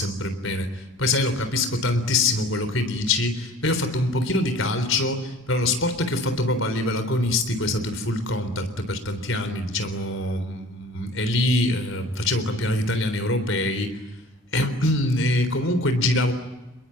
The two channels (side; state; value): both; normal; correlation 0.46